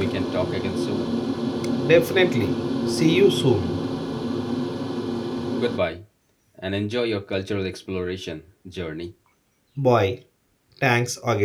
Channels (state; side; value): identical; both; correlation 1.00